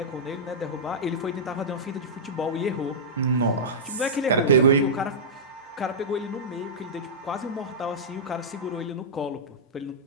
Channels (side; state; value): both; normal; correlation -0.13